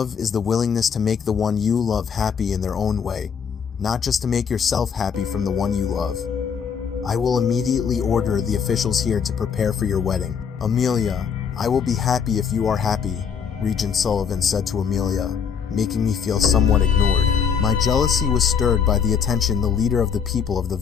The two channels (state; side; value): quieter; right; 6.8 dB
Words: is the willingness to make the one you love happy in their own way, not just to make yourself happy from the one you love. I will immediately order the officials here to prepare for your wedding. Amelia, I will be happy if you are happy, Regent Sullivan said to Amelia, making me feel somewhat ignored. My jealousy was stirred by the attention the leader of the people of the